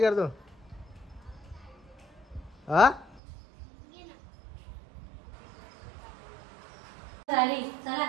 हा झाली चला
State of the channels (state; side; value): drops out; left; at 3.2 s